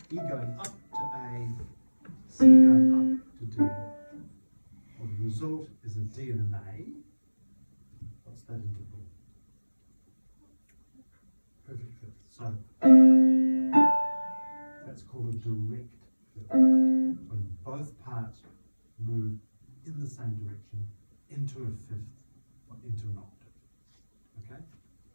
E going up to A, C going up to D. Well, the result is a D and an A. What's that interval? So that's called a direct fifth. When both parts move in the same direction into a fifth or into an octave. Okay?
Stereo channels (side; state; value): both; inverted; correlation -1.00